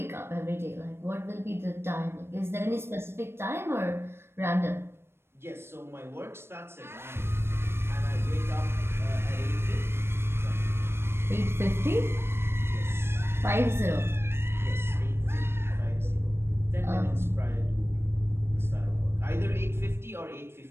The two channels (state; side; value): late; left; 0.12 ms